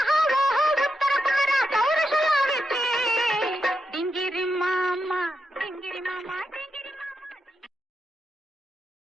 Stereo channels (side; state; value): both; normal; correlation 0.86